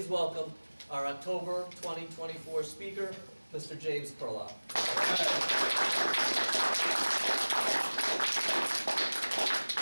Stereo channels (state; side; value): inverted; both; correlation -1.00